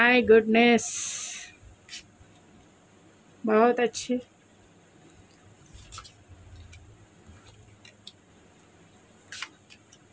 गुडनेस, बहुत अच्छे।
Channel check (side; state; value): both; identical; correlation 1.00